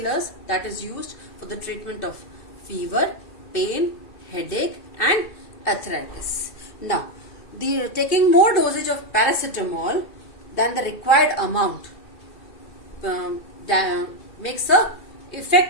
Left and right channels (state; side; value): late; right; 2.2 ms